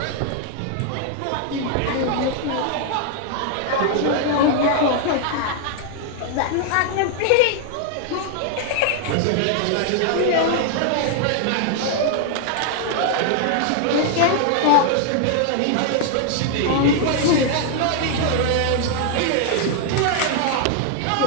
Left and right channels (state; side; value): different; both; correlation 0.00